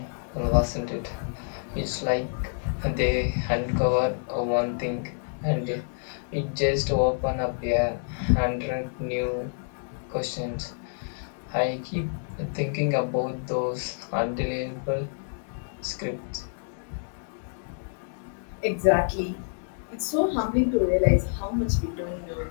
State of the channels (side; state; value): right; silent; 59 dB below the other